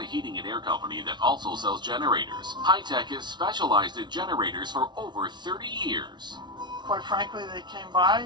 heating and air company that also sells generators. High Tech is specialized in generators for over 30 years. Quite frankly, they came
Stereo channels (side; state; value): left; late; 0.21 ms